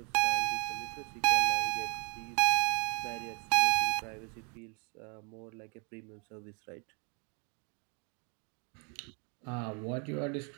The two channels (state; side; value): quieter; left; 36.6 dB